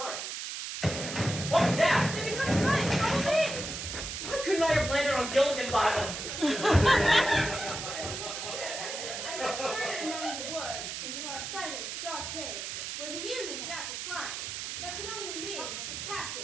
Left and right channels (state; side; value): noise; right; hiss, 6 dB below the sound